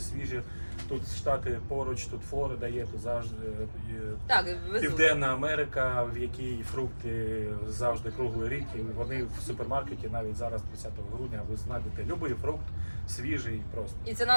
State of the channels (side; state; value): both; inverted; correlation -1.00